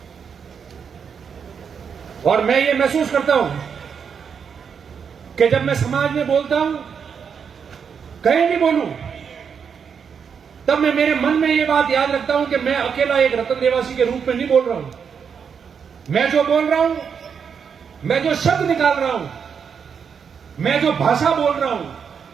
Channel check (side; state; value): left; quieter; 6.8 dB